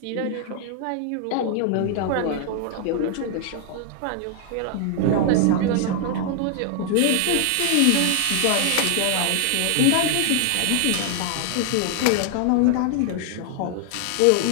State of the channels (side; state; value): both; different; correlation 0.00